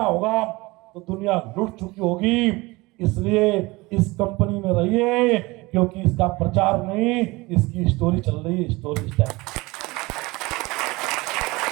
होगा तो दुनिया लुट चुकी होगी। इसलिए इस कंपनी में रहिए, क्योंकि इसका प्रचार नहीं, इसकी स्टोरी चल रही है, स्टोरी स्टाइल।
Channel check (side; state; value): left; quieter; 22.5 dB